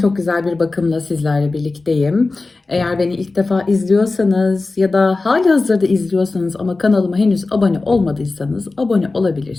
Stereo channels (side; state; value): right; quieter; 3.5 dB